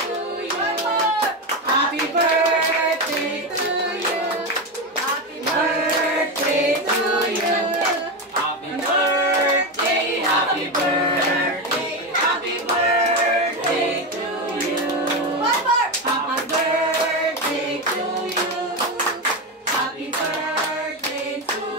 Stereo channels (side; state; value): both; normal; correlation 0.14